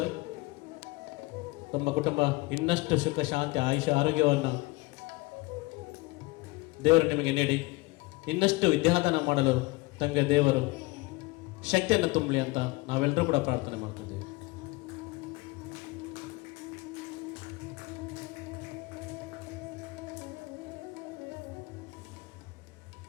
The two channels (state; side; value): quieter; right; 23.0 dB